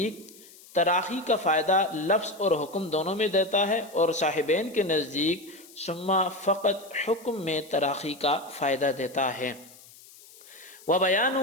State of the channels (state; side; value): noise; left; hiss, 22 dB below the sound